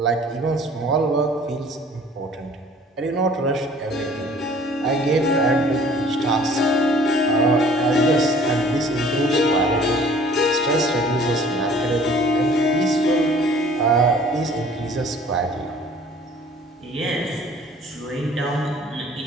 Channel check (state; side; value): normal; both; correlation 0.51